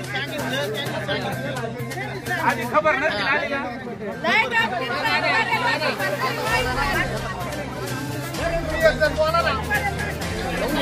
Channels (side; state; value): both; identical; correlation 1.00